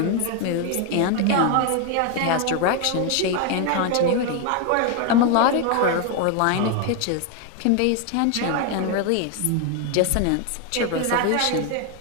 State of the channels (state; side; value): different; both; correlation 0.01